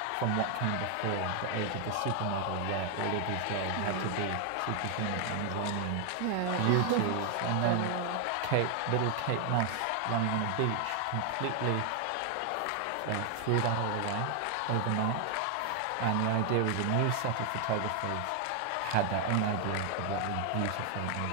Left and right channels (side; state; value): both; different; correlation 0.00